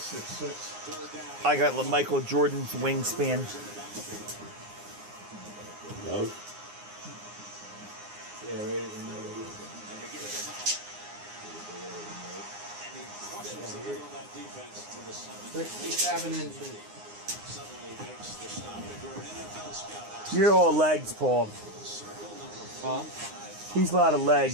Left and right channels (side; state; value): left; late; 9.7 ms